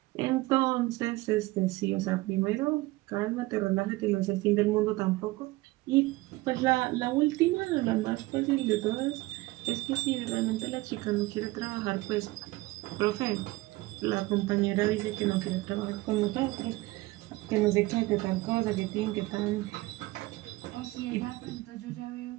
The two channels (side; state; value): left; quieter; 20.3 dB